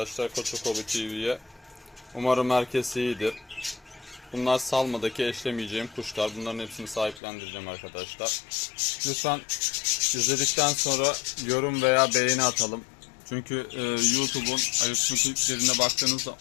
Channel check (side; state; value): right; drops out; at 7.2 s